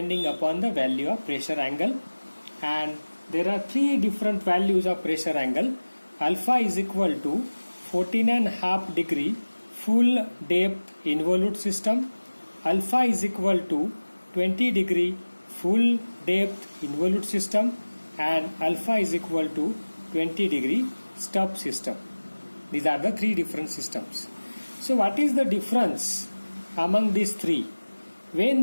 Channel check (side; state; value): both; inverted; correlation -1.00